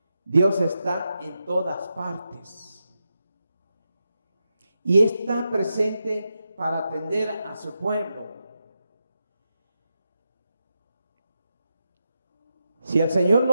Dios está en todas partes y está presente para atender a su pueblo. Si el Señor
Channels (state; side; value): inverted; both; correlation -0.87